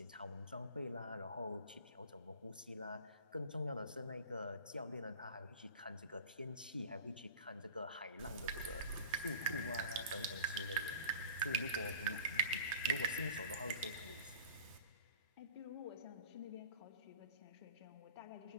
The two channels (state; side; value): inverted; both; correlation -0.40